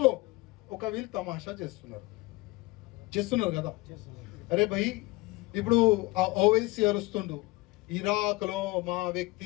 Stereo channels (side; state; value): right; quieter; 21.7 dB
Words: లో ఒక వీళ్ళు తమాషా చేస్తున్నారు కదా. అరే భయ్, ఇప్పుడు ఆ ఓవైసీ అరుస్తుండు, ఇరాక్ లో మా